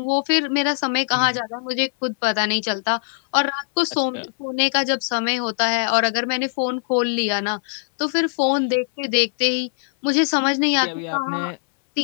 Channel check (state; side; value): silent; right; 65 dB below the other